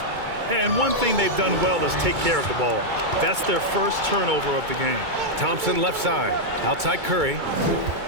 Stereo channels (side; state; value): left; late; 2.2 ms